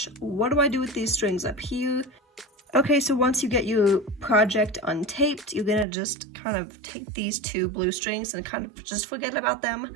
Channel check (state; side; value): drops out; left; at 5.9 s